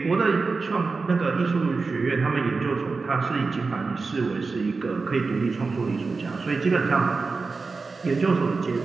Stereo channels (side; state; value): left; quieter; 4.2 dB